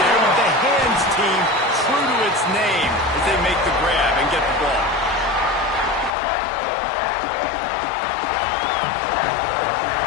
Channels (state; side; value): drops out; right; at 6.2 s